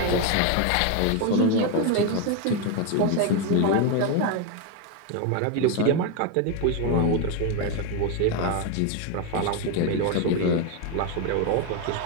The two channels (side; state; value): both; different; correlation 0.02